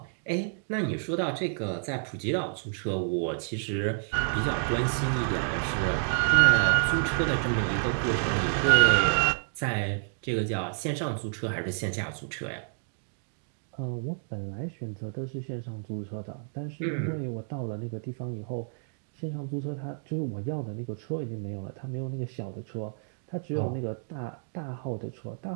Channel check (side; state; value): left; silent; digital silence